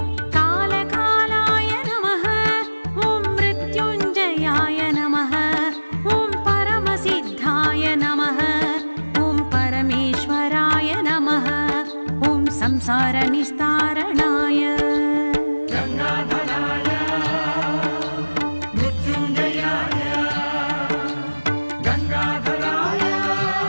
कालकालाय नमः ॐ मृत्युञ्जयाय नमः ॐ परमसिद्धाय नमः ॐ परमेश्वराय नमः ॐ संसारनिस्तारणाय गंगाधराय मृत्युंजयाय गंगाधराय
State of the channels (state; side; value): inverted; both; correlation -1.00